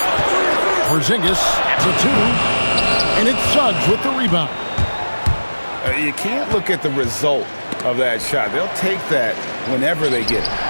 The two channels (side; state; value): both; inverted; correlation -1.00